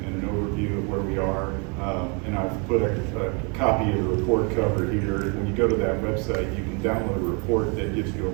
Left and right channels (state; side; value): quieter; left; 34.1 dB